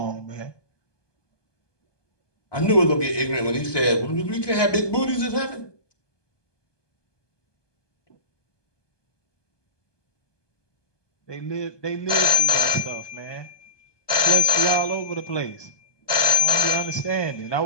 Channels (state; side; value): late; right; 1.2 ms